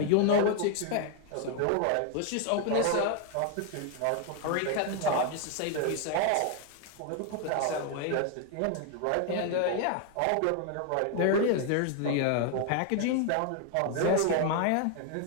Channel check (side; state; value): both; different; correlation 0.01